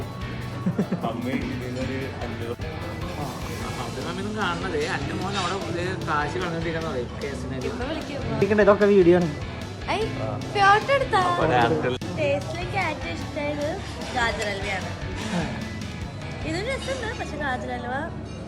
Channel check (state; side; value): identical; both; correlation 1.00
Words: കാണുന്നത് അന്റെ മോൻ അവിടെ കാശ് കളഞ്ഞിരിക്കുന്നത് കേസിനെ. ഇതൊക്കെ വീഡിയോ ആണ്. ഫോട്ടോ എടുത്താ ടേസ്റ്റിലേക്ക് ഏറ്റവും ഇഷ്ടമായത് ഗാജർ ഹൽവയാണ്. ഇതും രസമുണ്ട്, പക്ഷെ ഗാജർ ഹൽവ